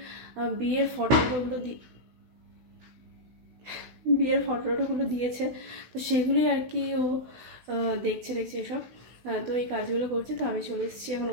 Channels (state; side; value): late; left; 16 ms